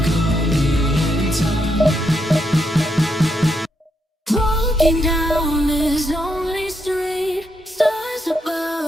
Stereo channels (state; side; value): normal; both; correlation 0.80